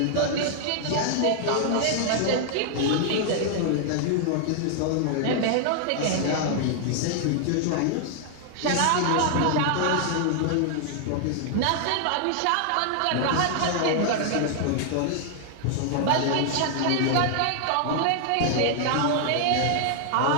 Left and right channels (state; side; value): different; both; correlation 0.00